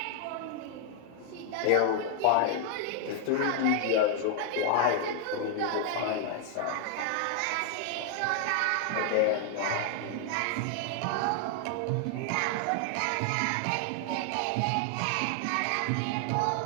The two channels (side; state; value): both; different; correlation 0.00